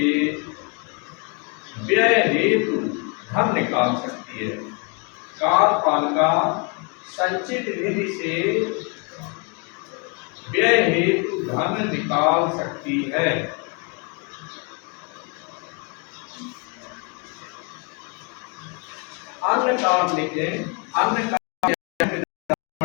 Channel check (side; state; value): right; quieter; 34.2 dB